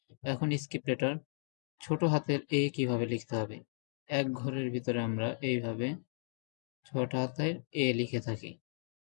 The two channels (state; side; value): silent; right; 54 dB below the other